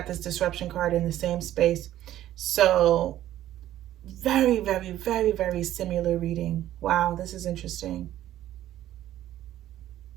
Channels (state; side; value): quieter; left; 13.0 dB